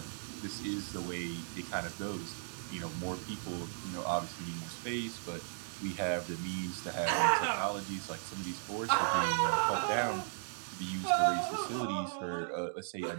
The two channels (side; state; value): left; silent; digital silence